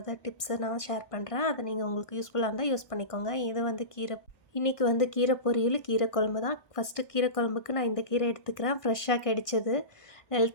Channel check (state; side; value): late; right; 1.6 ms